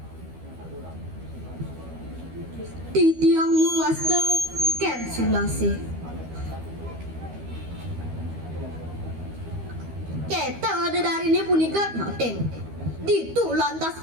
di tiang muasta ken sulase keta ada dari ini punika nyoten ditu lantas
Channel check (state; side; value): late; left; 12 ms